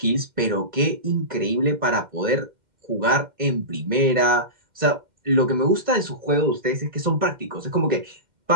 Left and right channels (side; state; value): left; late; 2.1 ms